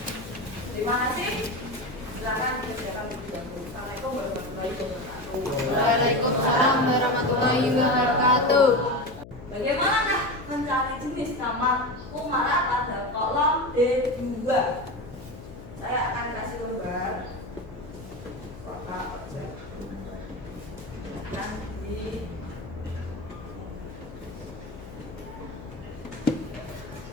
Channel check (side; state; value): left; noise; hum, 16 dB below the sound